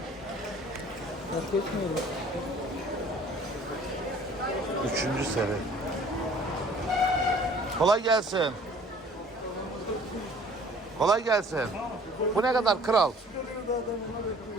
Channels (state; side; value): normal; both; correlation 0.52